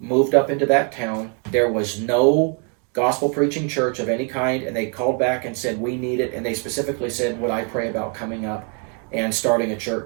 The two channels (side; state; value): left; quieter; 39.6 dB